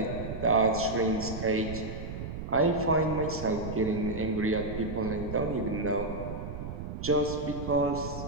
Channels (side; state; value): right; noise; rumble, 7 dB below the sound